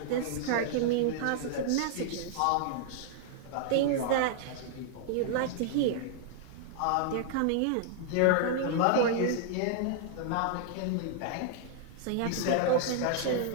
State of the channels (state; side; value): different; both; correlation -0.01